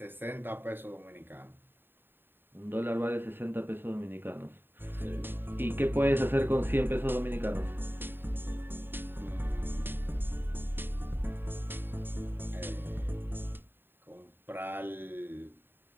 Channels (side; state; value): left; late; 0.098 ms